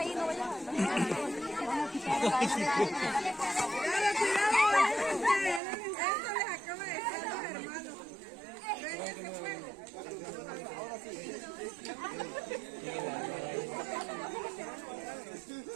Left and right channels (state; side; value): drops out; left; at 5.6 s